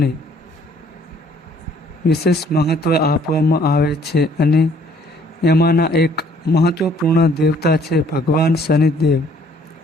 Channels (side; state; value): both; normal; correlation 0.60